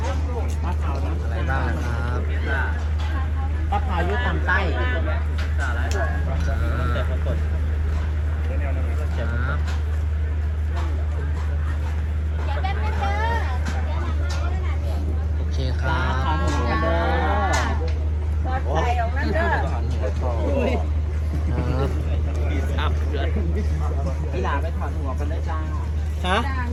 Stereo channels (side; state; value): both; identical; correlation 1.00